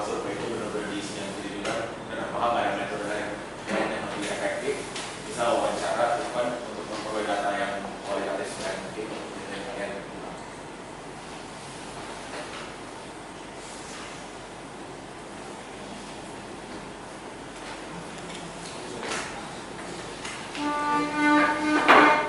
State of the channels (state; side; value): identical; both; correlation 1.00